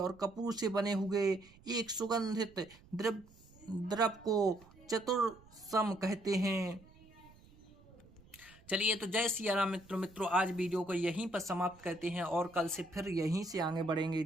कपूर से बने हुए एक सुगंधित द्रव्य को चतुर्सम कहते हैं। चलिए, तो जय सिया राम मित्रों, आज वीडियो को यहीं पर समाप्त करते हैं और कल से फिर यहीं से आगे बढ़ेंगे।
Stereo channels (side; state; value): right; noise; rumble, 25 dB below the sound